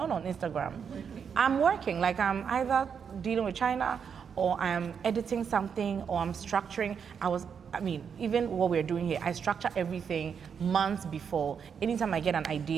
on Instagram. I'm working, like I'm either dealing with China or I'm editing something or I'm structuring. I mean, even what we're doing here, I structure everything months before. Anytime I get an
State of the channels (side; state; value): left; quieter; 6.9 dB